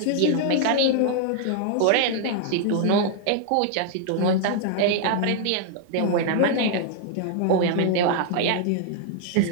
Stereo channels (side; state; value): both; different; correlation 0.00